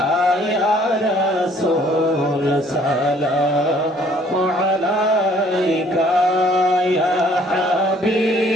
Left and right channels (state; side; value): normal; both; correlation 0.59